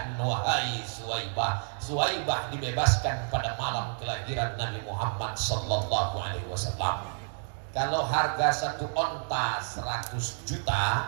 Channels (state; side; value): silent; left; 58 dB below the other